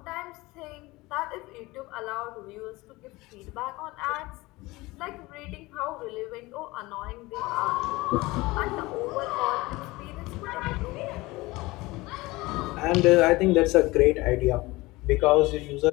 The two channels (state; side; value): quieter; right; 21.1 dB